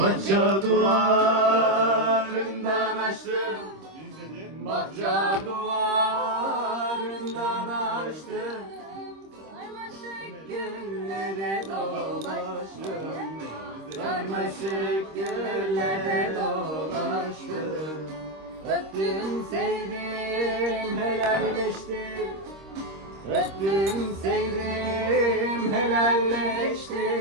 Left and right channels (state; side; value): late; left; 26 ms